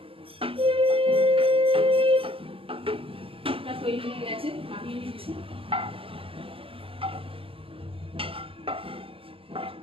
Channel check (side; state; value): left; late; 0.26 ms